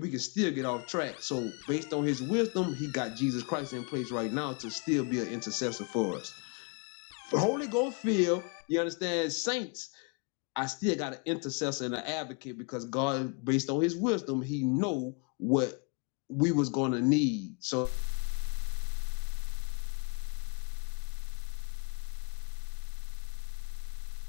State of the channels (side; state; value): right; quieter; 34.6 dB